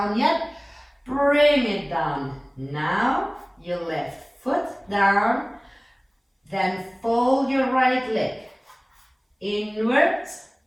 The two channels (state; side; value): identical; both; correlation 1.00